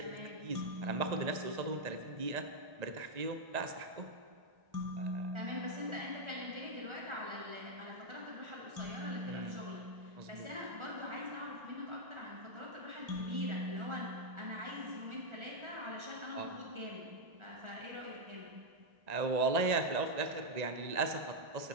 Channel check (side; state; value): left; late; 1.8 ms